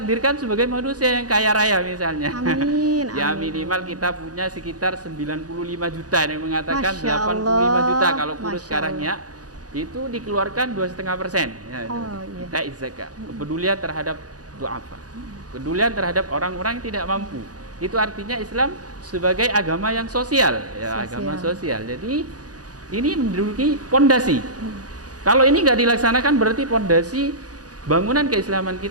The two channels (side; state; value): left; late; 0.68 ms